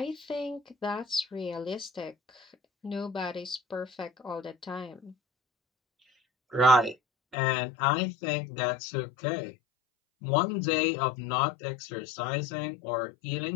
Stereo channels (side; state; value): right; drops out; at 7.4 s